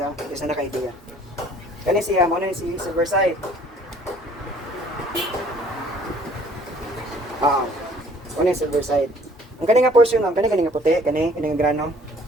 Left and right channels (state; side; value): normal; both; correlation 0.56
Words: ha, kasi naka-idea. Kani siya, mo na si Silverside. Ano yung Silverside. Ang kani nga portion ma'am, kani nga puti, kani nga grano.